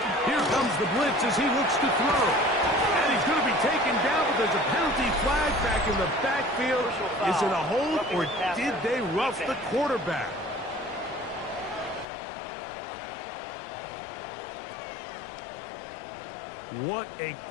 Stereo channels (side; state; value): right; drops out; at 12.1 s